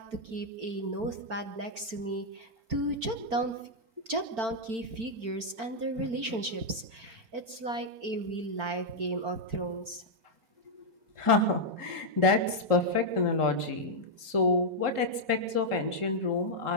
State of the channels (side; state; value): left; late; 4.4 ms